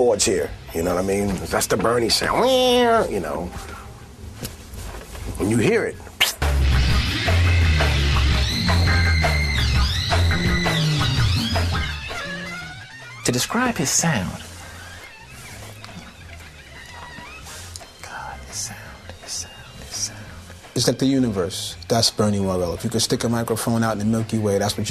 here. You know what I mean? That's the Bernie sound. You know, when you hear it. To describe his sound, it's like the universe. That's Bernie Worrell. If you could stick a microphone out in the Milky Way, that's what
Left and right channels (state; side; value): identical; both; correlation 1.00